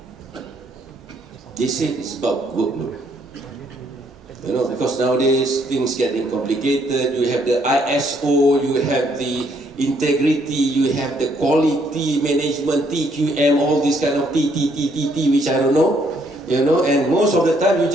They say it's about workload. Because nowadays things getting complicated. You have the ISO, you have the integrity, you have the quality management, TQM, all these kind of TTTTT, which I don't know. And most of the time you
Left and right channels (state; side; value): normal; both; correlation 0.69